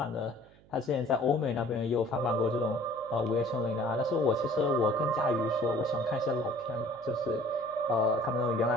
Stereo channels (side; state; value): right; noise; hum, 27 dB below the sound